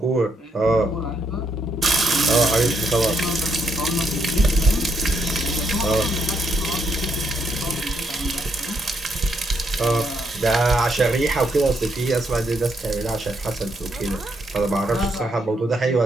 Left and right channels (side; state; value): both; normal; correlation 0.76